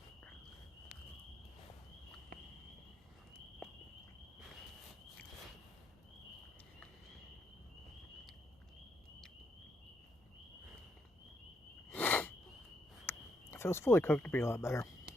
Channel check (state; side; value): normal; both; correlation 0.77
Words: If it was fully cooked, it'd be a lot better.